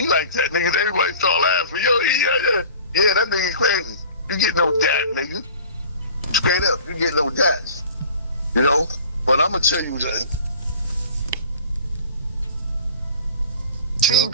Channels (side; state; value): both; inverted; correlation -0.44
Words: like that, nigga. Everybody start laughing. Yo, yeah, that nigga crazy. You get no dap, nigga. Straight up, you get no dap. You know? But I'm gonna tell you something. King